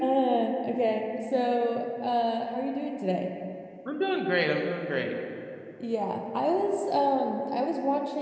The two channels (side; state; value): both; identical; correlation 1.00